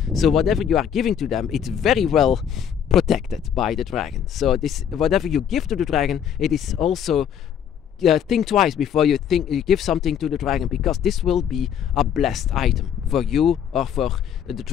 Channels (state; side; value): quieter; right; 8.7 dB